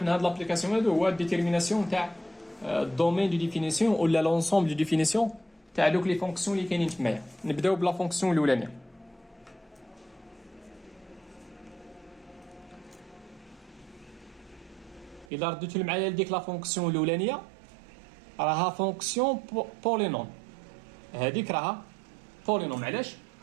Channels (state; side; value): drops out; left; at 15.2 s